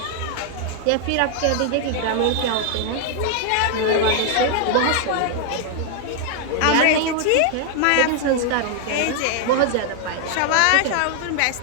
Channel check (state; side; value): different; both; correlation 0.00